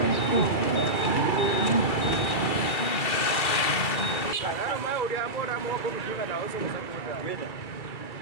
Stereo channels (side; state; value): right; late; 2.4 ms